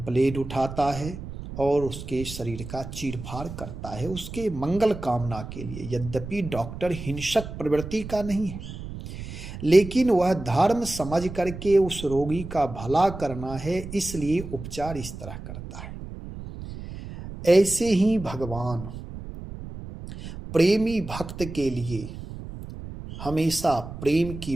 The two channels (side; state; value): right; noise; rumble, 10 dB below the sound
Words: उठाता है और उसके शरीर का चीरफाड़ करता है, उसके मंगल कामना के लिए। यद्यपि डॉक्टर हिंसक प्रवृत्ति का नहीं है, लेकिन वह धर्म समझ करके उस रोगी का भला करना है, इसलिए उपचार इस तरह करता है। ऐसे ही भगवान प्रेमी भक्त के लिए हमेशा प्रेम